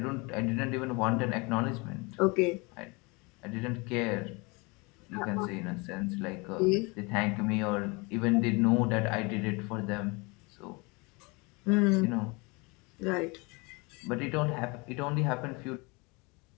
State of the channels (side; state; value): right; quieter; 27.7 dB